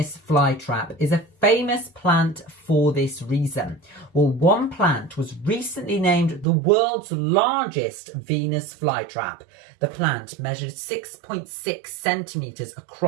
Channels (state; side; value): drops out; left; at 6.5 s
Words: flytrap is a famous plant for this reason. Well, one plant was recently named the world's largest Venus flytrap. The plant measured 6.6 centimetres